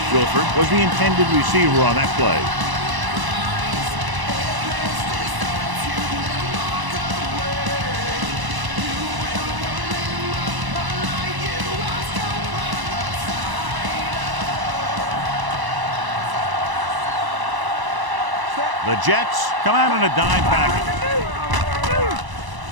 Wilford was the intended receiver on that play. The Jets come out in a dime package.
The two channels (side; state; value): left; late; 1.0 ms